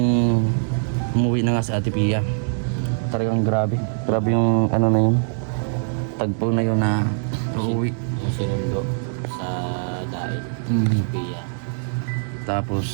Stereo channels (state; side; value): silent; left; digital silence